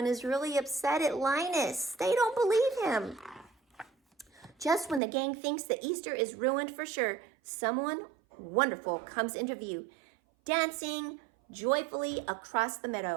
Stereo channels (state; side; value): drops out; left; at 5.0 s